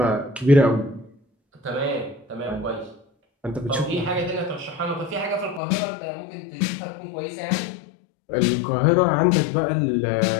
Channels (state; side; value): drops out; right; at 5.6 s